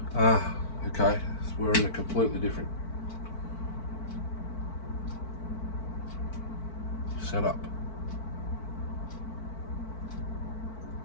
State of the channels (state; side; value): late; right; 4.5 ms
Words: go. Okay, so we're in a completely different setup.